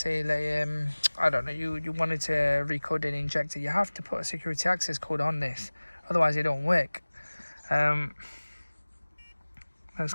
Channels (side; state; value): both; inverted; correlation -1.00